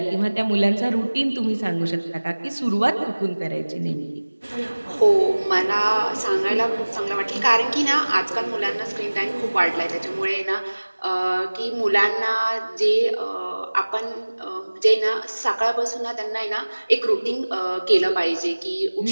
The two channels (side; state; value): both; inverted; correlation -1.00